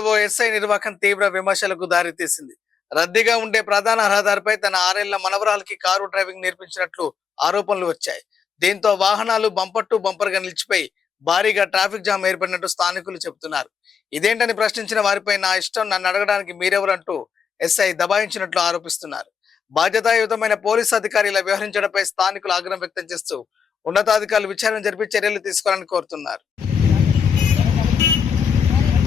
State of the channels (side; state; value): right; quieter; 6.6 dB